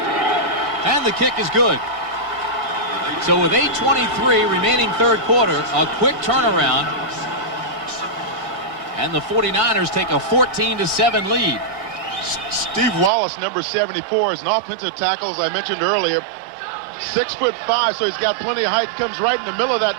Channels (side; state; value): left; drops out; at 13.1 s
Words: And the kick is good. So with 8:23 remaining third quarter, a quick turnaround. And the 49ers take a 14-7 lead. Steve Wallace, number 74, is an offensive tackle, as I mentioned earlier. 6'5", so he's got plenty of height. Comes right in the middle of that.